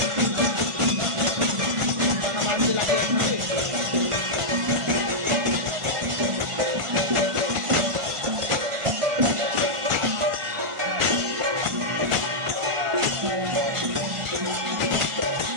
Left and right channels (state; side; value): late; left; 1.5 ms